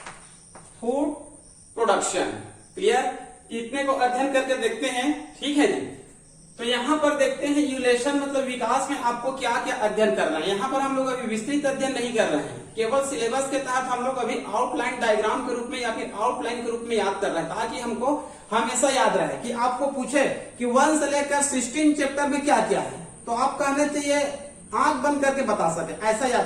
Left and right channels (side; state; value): both; identical; correlation 1.00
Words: food production. Clear. इतने को अध्ययन करके देखते हैं। ठीक है जी। तो यहाँ पर देखते हैं इवोल्यूशन मतलब विकास में आपको क्या क्या अध्ययन करना है। यहाँ पर हम लोग अभी विस्तृत अध्ययन नहीं कर रहे हैं, केवल सिलेबस के तहत हम लोग अभी आउटलाइन डायग्राम के रूप में या फिर आउटलाइन के रूप में याद कर रहे हैं, ताकि हमको हमेशा याद रहे कि आपको पूछे कि 1 से लेकर 16 चैप्टर में क्या क्या है तो आप कहने चाहिए आंख बंद करके बता सके, ऐसा